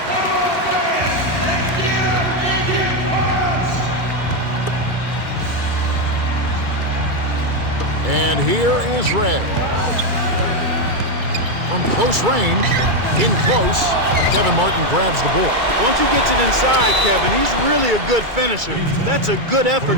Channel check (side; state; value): left; late; 2.3 ms